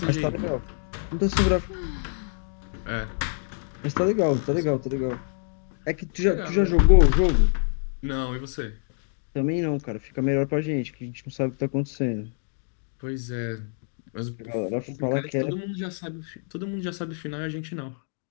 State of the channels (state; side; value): silent; right; 61 dB below the other